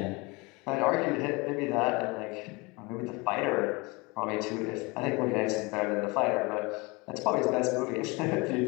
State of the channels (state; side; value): quieter; right; 26.1 dB